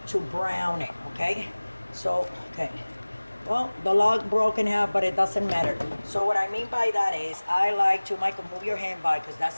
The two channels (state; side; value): inverted; both; correlation -1.00